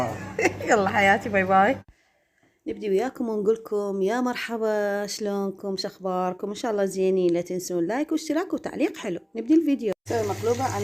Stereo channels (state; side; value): identical; both; correlation 1.00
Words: يلا حياتي، باي باي. نبدي وياكم ونقول لكم يا مرحبا، شلونكم، شخباركم؟ ان شاء الله زينين. لا تنسون لايك واشتراك وتعليق حلو. نبدي الفيديو. نسوي مقلوبة